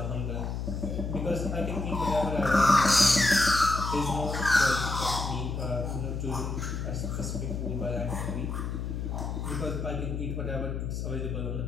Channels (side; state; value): left; noise; hum, 3 dB below the sound